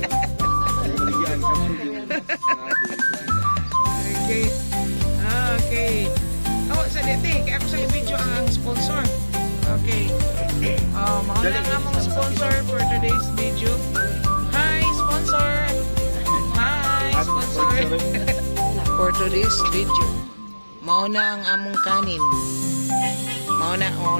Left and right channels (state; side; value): inverted; both; correlation -1.00